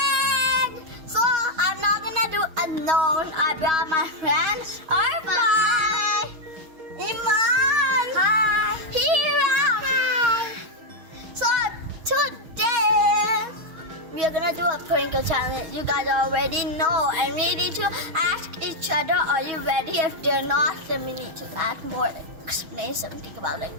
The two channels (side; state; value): left; late; 6.3 ms